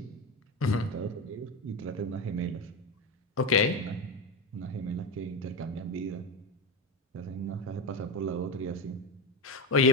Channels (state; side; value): normal; both; correlation 0.17